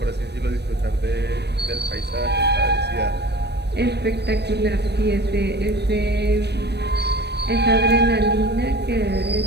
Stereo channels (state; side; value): late; left; 0.49 ms